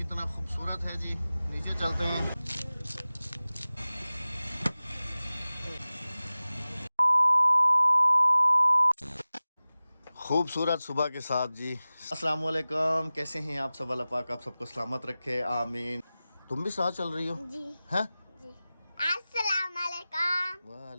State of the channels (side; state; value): both; inverted; correlation -0.97